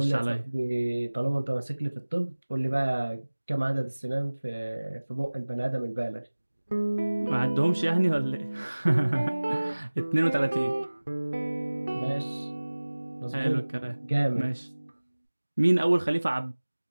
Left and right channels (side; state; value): both; inverted; correlation -1.00